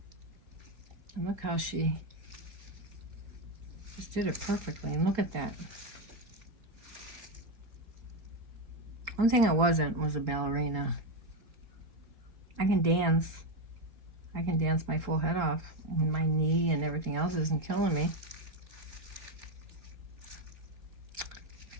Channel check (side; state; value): left; late; 3.8 ms